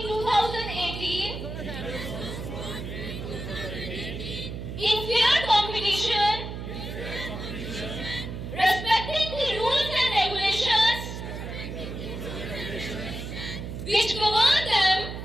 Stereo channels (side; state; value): right; noise; hum, 7 dB below the sound